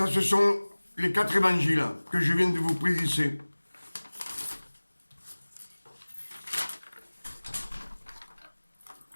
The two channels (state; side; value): inverted; both; correlation -1.00